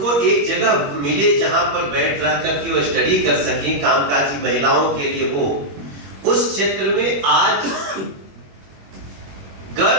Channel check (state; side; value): late; left; 21 ms